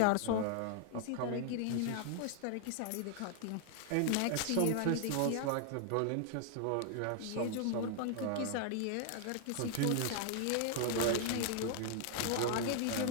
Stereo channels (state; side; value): different; both; correlation 0.00